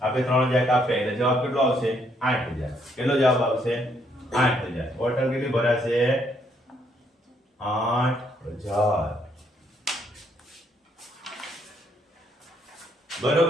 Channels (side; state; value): both; normal; correlation 0.71